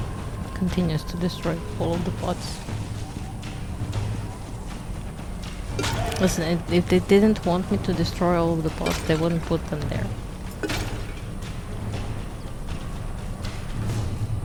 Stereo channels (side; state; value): both; identical; correlation 1.00